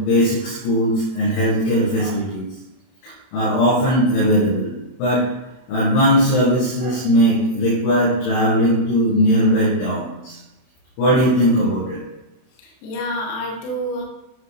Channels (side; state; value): right; late; 31 ms